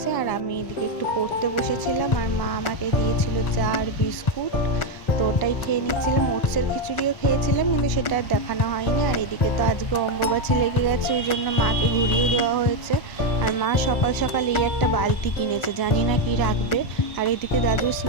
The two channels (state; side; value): late; right; 1.4 ms